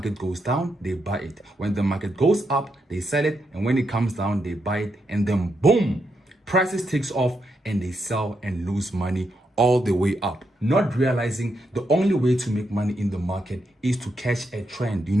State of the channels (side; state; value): both; normal; correlation 0.82